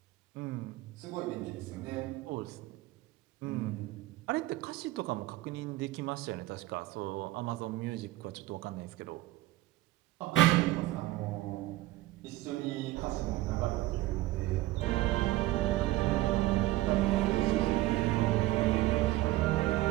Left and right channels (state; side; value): quieter; left; 17.2 dB